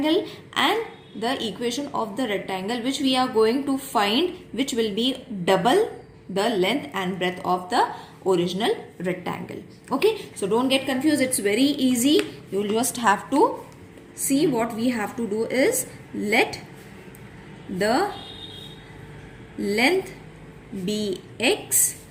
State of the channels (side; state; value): both; identical; correlation 1.00